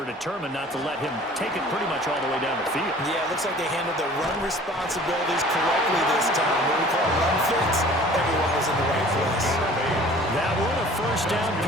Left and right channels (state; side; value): normal; both; correlation 0.48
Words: determined not to let him take it pretty much all the way down the field. Yeah, it looks like they handled their run responsibilities correctly this time. What we call run fits, everyone was in the right place. That one, a first down